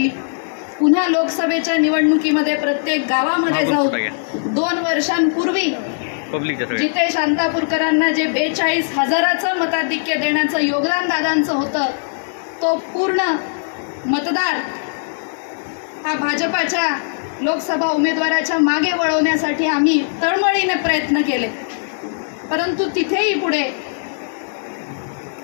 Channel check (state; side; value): silent; right; 66 dB below the other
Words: पुन्हा लोकसभेच्या निवडणुकीमध्ये प्रत्येक गावामध्ये जाऊन 2 वर्षांपूर्वी जिथे शांतापूरकरांना जे 42,000चं मताधिक्य देण्याचं योगदान दादांचं होतं, तो पूर्ण मतदार हा भाजपाच्या लोकसभा उमेदवाराच्या मागे वळवण्यासाठी आम्ही तळमळीने प्रयत्न केले, परंतु तिथेही पुढे